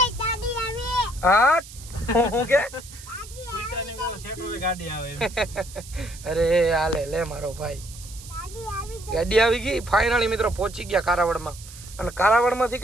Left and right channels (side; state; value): right; noise; hiss, 17 dB below the sound